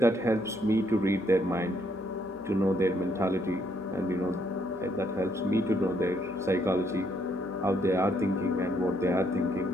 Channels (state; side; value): normal; both; correlation 0.72